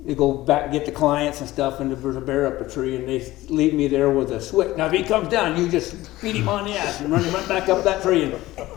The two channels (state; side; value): quieter; right; 17.1 dB